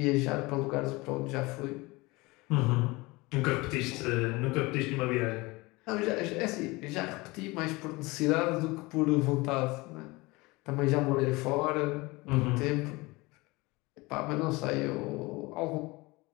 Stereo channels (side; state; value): right; quieter; 23.2 dB